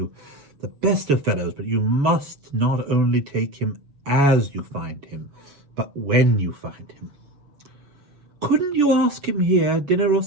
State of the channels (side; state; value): left; late; 7.1 ms